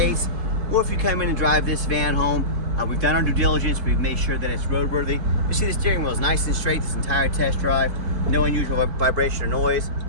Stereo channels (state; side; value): late; left; 4.5 ms